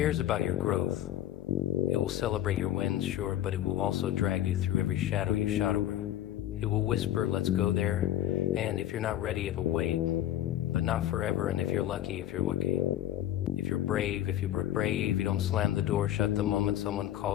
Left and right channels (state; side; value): quieter; right; 12.5 dB